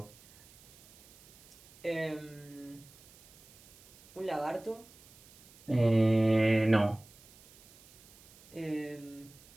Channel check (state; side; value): noise; right; hiss, 24 dB below the sound